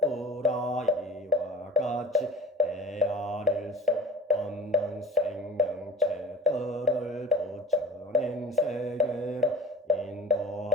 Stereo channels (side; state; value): both; normal; correlation 0.38